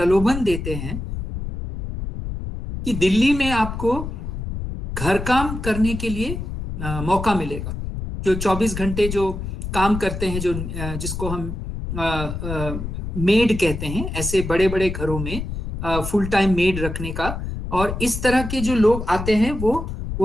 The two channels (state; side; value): noise; left; rumble, 6 dB below the sound